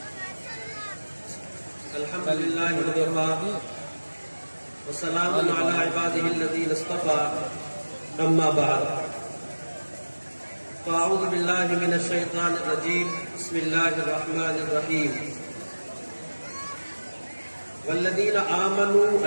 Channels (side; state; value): both; inverted; correlation -1.00